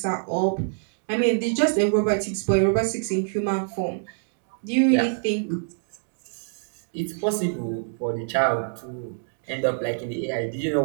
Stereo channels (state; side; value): silent; left; digital silence